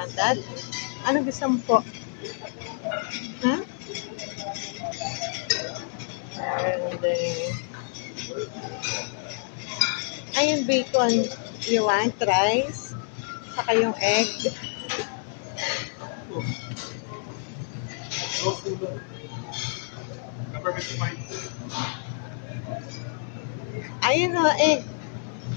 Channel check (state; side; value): silent; right; digital silence